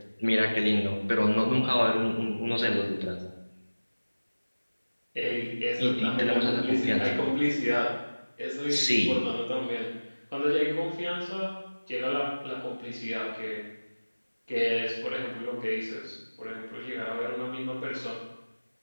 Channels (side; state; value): both; inverted; correlation -1.00